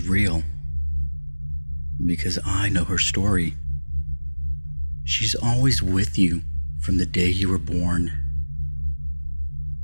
real. Because I know her story. She's always with you from the day you were born.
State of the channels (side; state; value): both; inverted; correlation -1.00